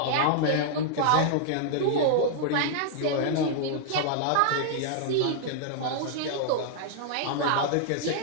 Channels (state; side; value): different; both; correlation -0.01